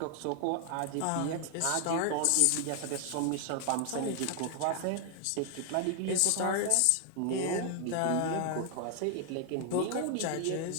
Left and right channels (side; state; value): both; different; correlation 0.00